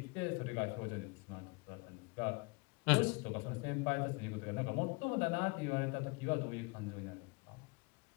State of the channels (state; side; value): quieter; right; 27.5 dB